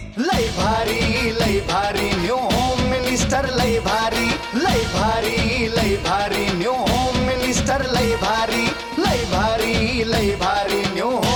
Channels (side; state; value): both; identical; correlation 1.00